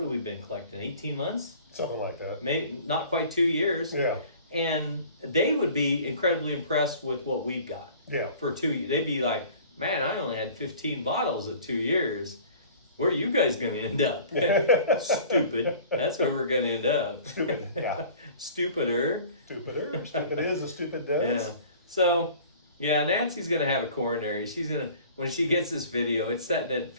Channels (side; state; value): both; inverted; correlation -0.47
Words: we been collecting? 18 months? Something like that. Maybe not quite 2 years. Yeah. And they would be incredibly impressed with what we've got. Yeah. For 2 years, they'd be like, "Man, I only had 15 bottles at 2 years. Where are you guys going to end up?" Stupid. That's where we're going to end up. Stupid. Yeah. Stupider. Stupider. Stupid is as stupid does. Yeah. So, yeah, Nancy's going to have a coronary. She's going to, when she gets this video, it's setting at